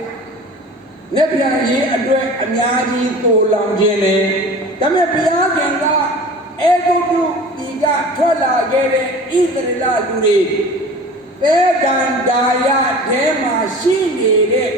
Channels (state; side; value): normal; both; correlation 0.39